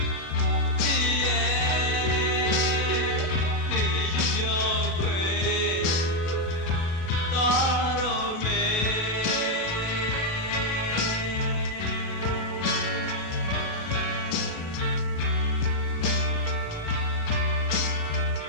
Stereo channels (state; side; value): late; right; 36 ms